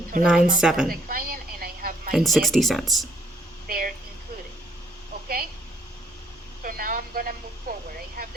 amount from 4097 the client and I have my and net 60 cents.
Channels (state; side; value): normal; both; correlation 0.68